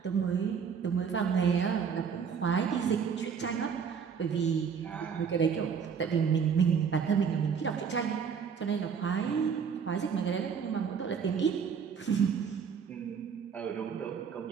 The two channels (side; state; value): left; quieter; 6.7 dB